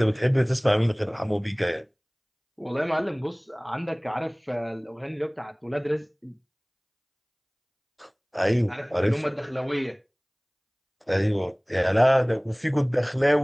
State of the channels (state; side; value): identical; both; correlation 1.00